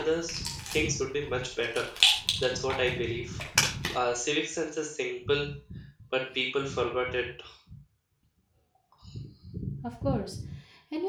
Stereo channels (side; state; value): both; identical; correlation 1.00